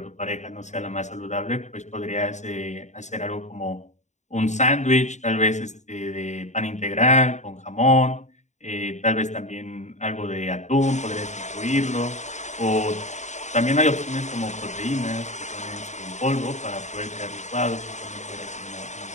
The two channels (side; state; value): right; late; 0.34 ms